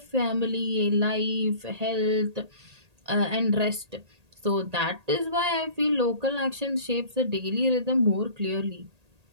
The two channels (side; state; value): left; late; 1.8 ms